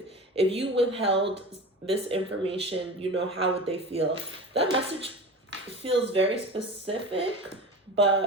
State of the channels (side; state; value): both; normal; correlation 0.32